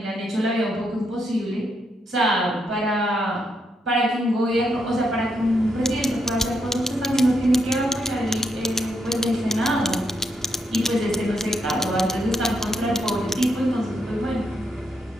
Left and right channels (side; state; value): both; normal; correlation 0.79